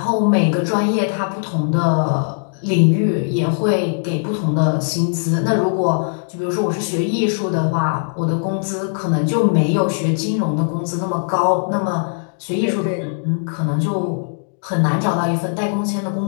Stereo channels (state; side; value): silent; right; digital silence